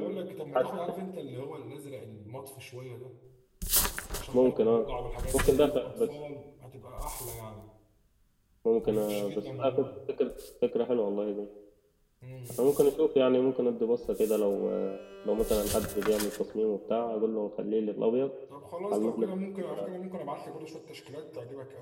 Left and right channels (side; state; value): both; identical; correlation 1.00